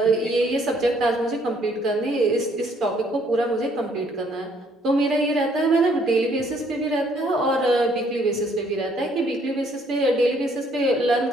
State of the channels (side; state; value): both; normal; correlation 0.65